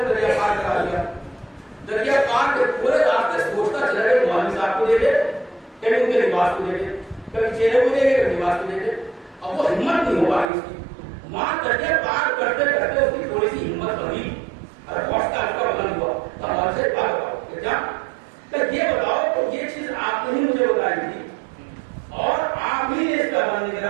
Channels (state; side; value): drops out; left; at 10.5 s